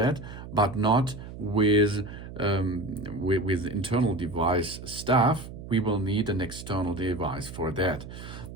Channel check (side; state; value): right; noise; hum, 12 dB below the sound